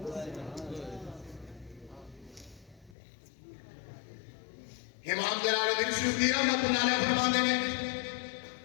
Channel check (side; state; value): right; drops out; at 3.0 s